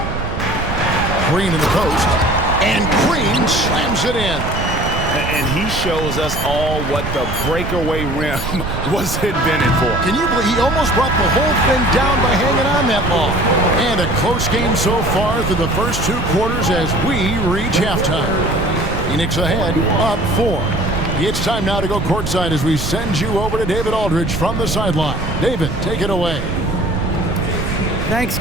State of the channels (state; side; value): noise; right; rumble, 5 dB below the sound